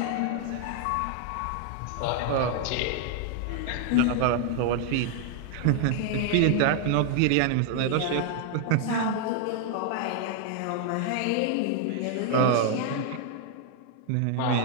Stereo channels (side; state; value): both; different; correlation 0.00